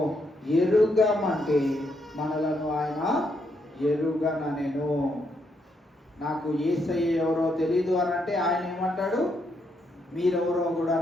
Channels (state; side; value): normal; both; correlation 0.77